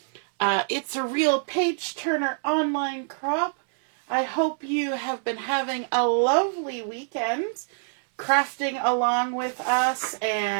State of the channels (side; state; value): left; silent; digital silence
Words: It's a Real Page Turner online crop. I hope you have been having a lovely weekend crafting along with us